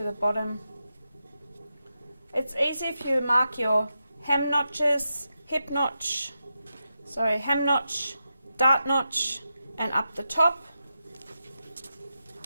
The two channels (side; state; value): both; inverted; correlation -0.88